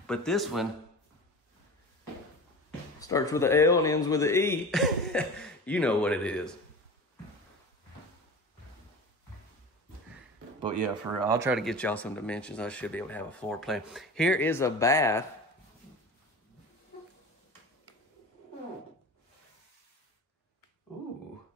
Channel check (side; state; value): both; normal; correlation 0.33